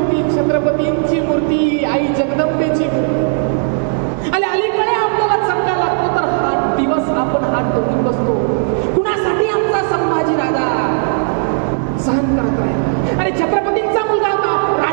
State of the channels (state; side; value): silent; left; digital silence